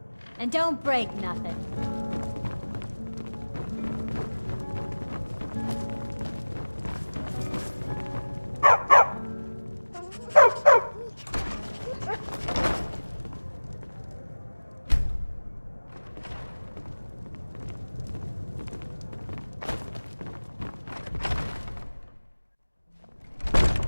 And don't break nothing.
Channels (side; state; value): both; inverted; correlation -1.00